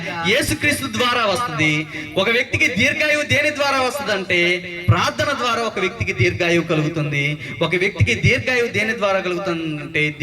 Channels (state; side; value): identical; both; correlation 1.00